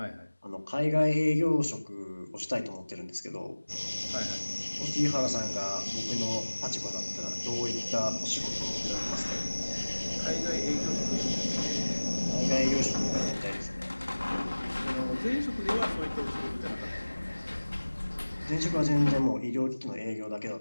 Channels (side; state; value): both; inverted; correlation -1.00